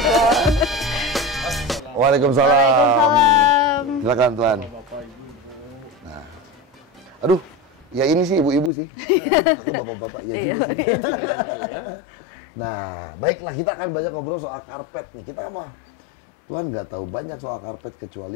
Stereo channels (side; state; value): right; drops out; at 8.7 s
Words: Waalaikumsalam. Silakan Tuan. Nah, aduh, ya ini sih ibu-ibu sih. Aku bapak-bapak ya juga sih. Nah, baiklah, kita akan banyak ngobrol soal karpet nih. Kita mah Tuan nggak tahu banyak soal karpet